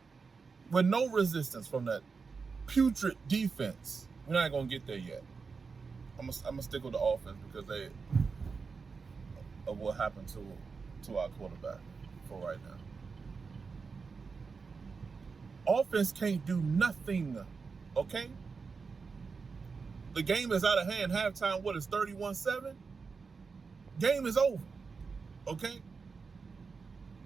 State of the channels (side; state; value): left; quieter; 5.0 dB